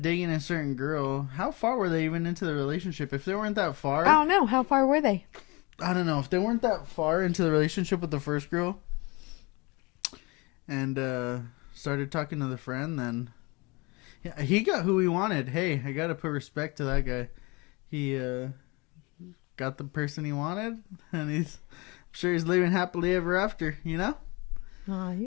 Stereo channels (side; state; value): right; quieter; 26.4 dB